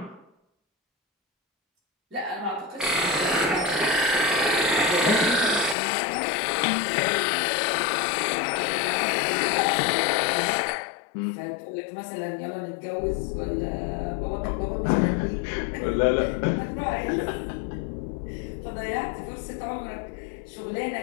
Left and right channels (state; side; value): drops out; right; at 5.8 s